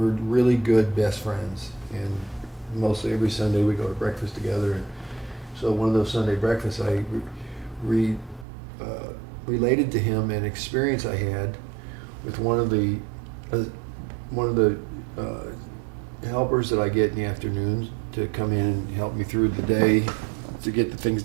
really good best friends, and mostly every Sunday we go to breakfast together. And so one of those Sunday breakfasts, I related to him an experience I had with one of the helpers that I get in the afternoons to come in and help me through the day to get the things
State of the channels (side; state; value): left; drops out; at 8.5 s